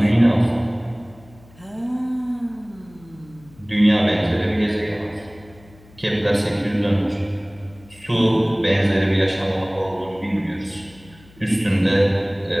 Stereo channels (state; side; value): noise; left; hum, 25 dB below the sound